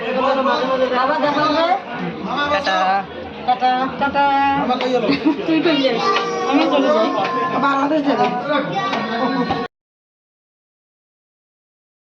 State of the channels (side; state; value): both; identical; correlation 1.00